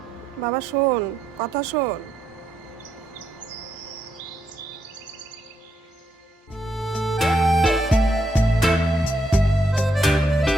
বাবা শোন, কথা শোন।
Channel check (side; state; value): both; normal; correlation 0.78